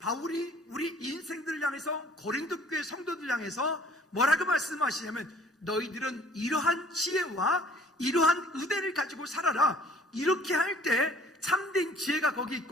우리 인생들을 향해서 고린도 교회 성도들 향해서 뭐라고 말씀하시냐면 너희들은 이러한 지혜와 이러한 의대를 가지고 살아라. 이렇게 할 때 참된 지혜가 거기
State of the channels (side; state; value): both; normal; correlation 0.54